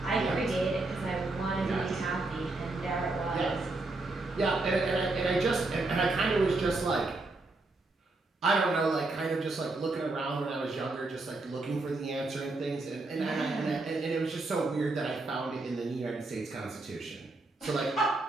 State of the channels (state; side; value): quieter; left; 3.2 dB